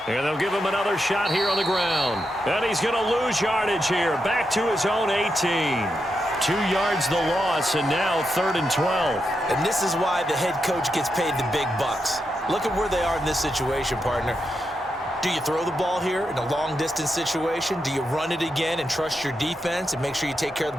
And they'll give him another shot here on the ground. And he's going to lose yardage here. Back to his own 18. 2 yards the loss, and now 3rd and 12. And this is why the head coach gets paid the big bucks. Look at where they are in this situation, partner. Do you throw the ball here in a long-distance situation? Do you run it again and trust your defense and make sure you take care of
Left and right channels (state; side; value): normal; both; correlation 0.85